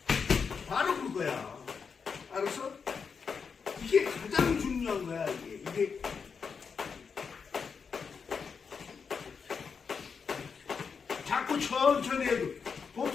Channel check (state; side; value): quieter; right; 5.8 dB